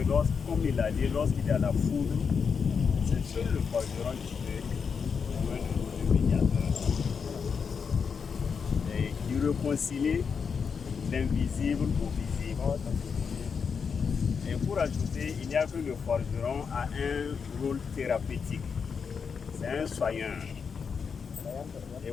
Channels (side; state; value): right; quieter; 6.0 dB